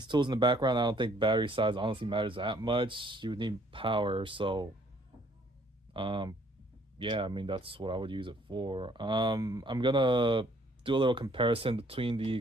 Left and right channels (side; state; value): both; normal; correlation 0.62